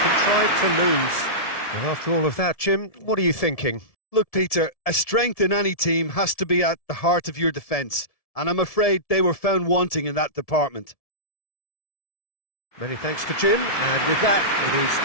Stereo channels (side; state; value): right; late; 1.7 ms